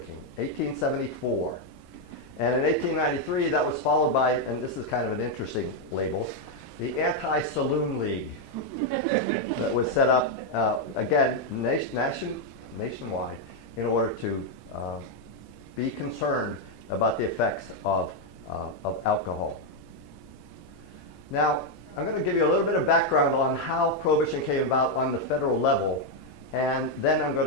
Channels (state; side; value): normal; both; correlation 0.02